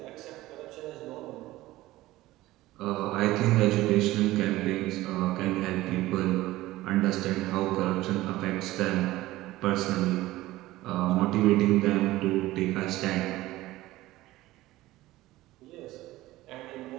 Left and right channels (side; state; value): left; quieter; 17.1 dB